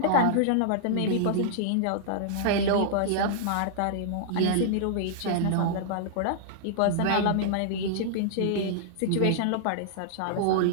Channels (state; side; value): different; both; correlation -0.01